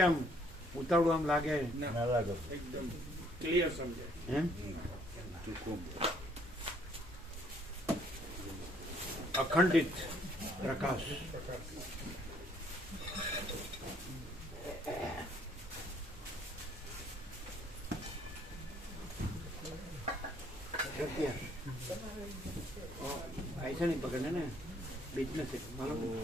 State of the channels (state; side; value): normal; both; correlation 0.64